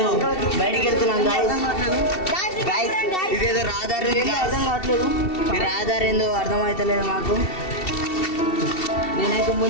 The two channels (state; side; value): late; right; 2.7 ms